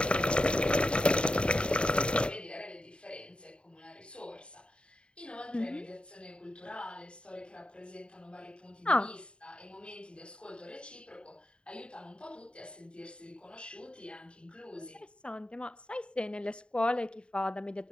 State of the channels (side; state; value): right; late; 0.054 ms